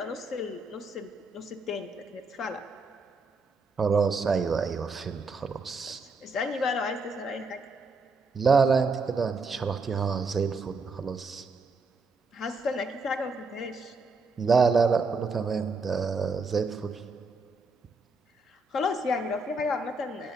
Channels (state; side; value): quieter; left; 3.4 dB